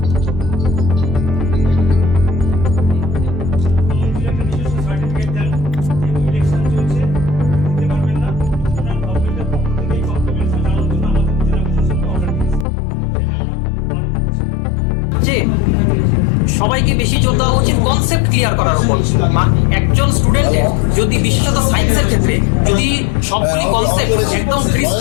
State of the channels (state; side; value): drops out; right; at 12.7 s